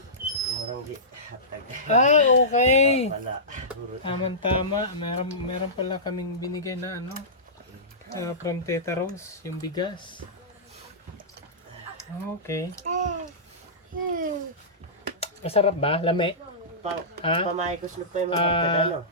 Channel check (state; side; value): normal; both; correlation -0.19